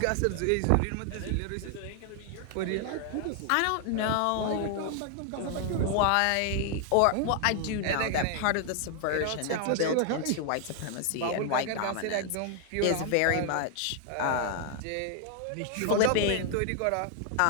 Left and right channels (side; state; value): both; different; correlation 0.00